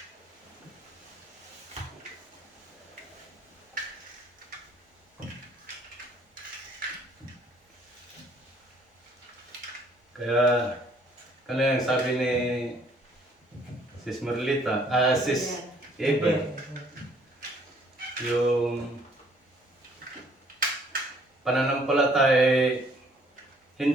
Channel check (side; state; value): both; normal; correlation 0.61